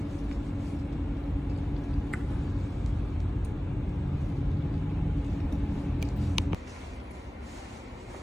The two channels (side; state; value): both; normal; correlation 0.97